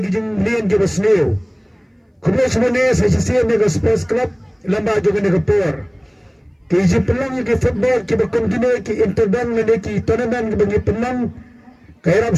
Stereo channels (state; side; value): identical; both; correlation 1.00